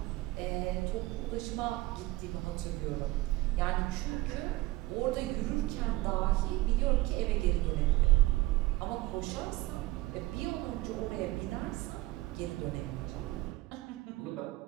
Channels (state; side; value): quieter; left; 18.9 dB